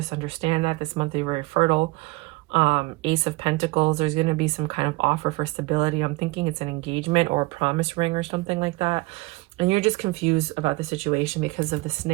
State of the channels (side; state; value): left; quieter; 23.6 dB